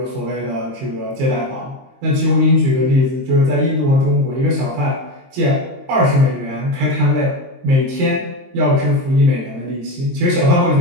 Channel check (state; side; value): late; left; 23 ms